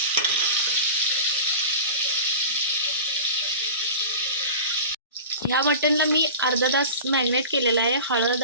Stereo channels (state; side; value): inverted; both; correlation -0.34